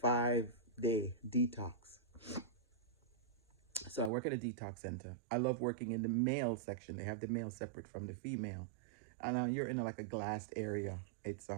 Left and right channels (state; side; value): drops out; left; at 4.1 s